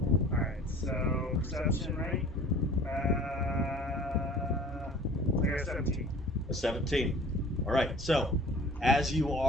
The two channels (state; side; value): normal; both; correlation 0.47